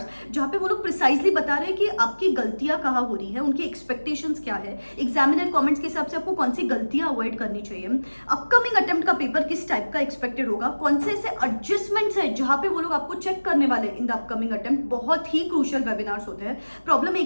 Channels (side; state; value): both; inverted; correlation -1.00